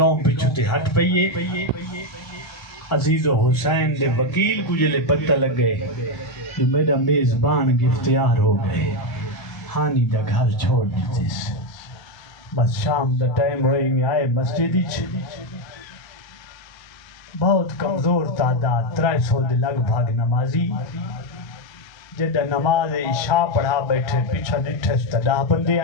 پیچھو تے ہٹ پئیے عزیز و حسین دے وکیل کو جلے پتہ لگ گئے جو میرا میزبان گفتیار ہو گئے ہانی دا گھر چھوڑ دیتے بس شام دا ٹائم ہوئی میں آئے مسجدی بہت کمزور تعداد 300 دے لگ بھاگ نمازی جدہ نماز عشاء پڑھا بیٹھے پیچھا نٹھے ستدہ بندے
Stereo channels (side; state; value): right; late; 1.3 ms